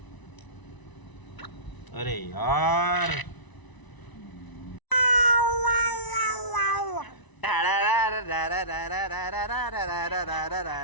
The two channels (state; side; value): late; right; 1.0 ms